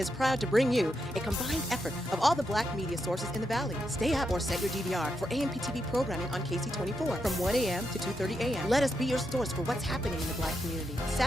proud to bring you a combined effort of all the black media sources in the Valley. Stay up or set your DVR for AMP-TV programming on KC24 from 1 a.m. to 2:30 a.m. Let us be your source for what's happening in the black community.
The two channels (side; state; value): both; normal; correlation 0.83